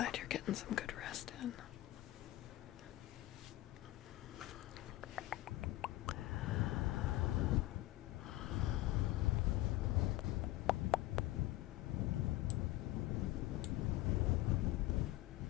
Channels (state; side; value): quieter; right; 17.1 dB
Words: you're getting some good rest in.